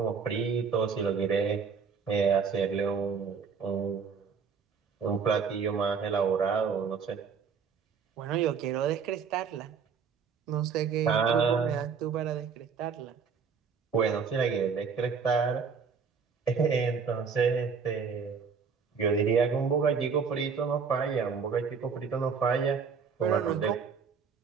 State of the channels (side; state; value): left; quieter; 6.0 dB